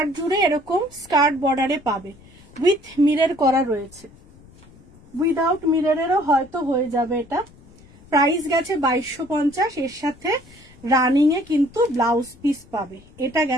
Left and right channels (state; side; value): noise; left; rumble, 24 dB below the sound